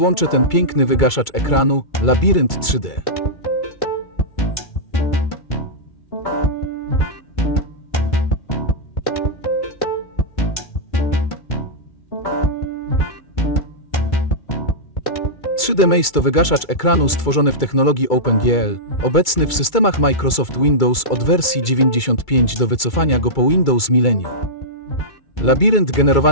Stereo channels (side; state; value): right; late; 2.3 ms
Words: ten piękny wygaszacz ekranu Labirynt 3D. Maze to wygaszacz ekranu stworzony w technologii OpenGL, obecny w systemach Microsoft Windows od wersji 95 do wycofania go po Windows Millennium. Labirynt